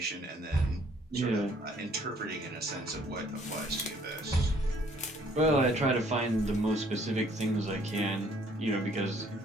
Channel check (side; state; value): both; normal; correlation 0.61